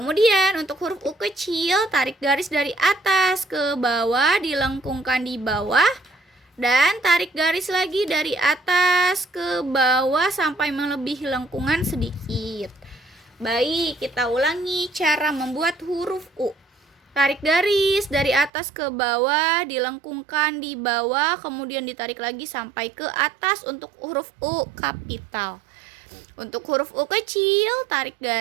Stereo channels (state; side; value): drops out; left; at 18.5 s